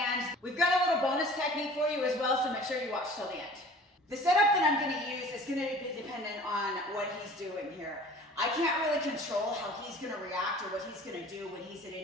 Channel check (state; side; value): normal; both; correlation 0.46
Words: we've got a little bonus technique for you as well, so make sure you watch till the end. The setup that I'm gonna use is gonna be dependent on what he's doing here. I can't really control how he's gonna react or what he's gonna do when he's at